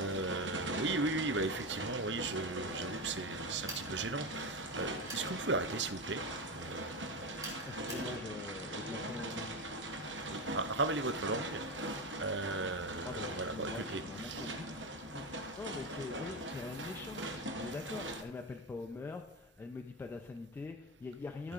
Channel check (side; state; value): both; normal; correlation 0.17